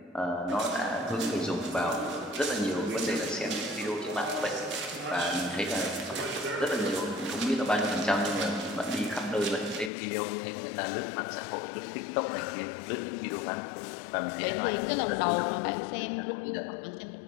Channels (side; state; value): right; drops out; at 9.9 s